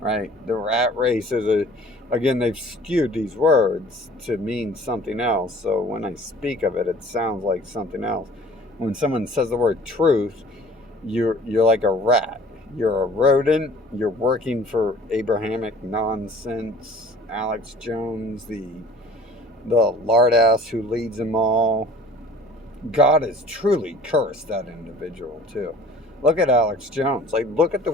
Right? The rat race is again, they've skewed these words to mean something else. So when I speak of it, it sounds like something else. When someone says the word truth, you're like a rat. You're a rodent. You're working for Abrahamic nonsense. Alex Jones, the lard ass who leads them all. God has truly cursed that individual too. Look at Alex Jones. Like, look at the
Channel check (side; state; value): both; normal; correlation 0.49